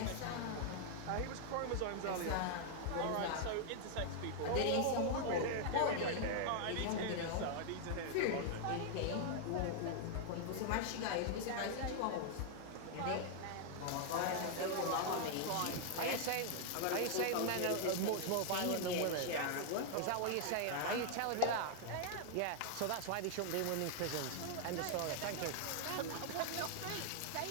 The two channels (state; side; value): different; both; correlation 0.00